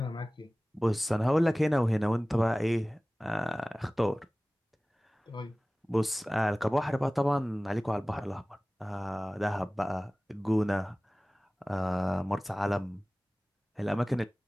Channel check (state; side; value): normal; both; correlation 0.98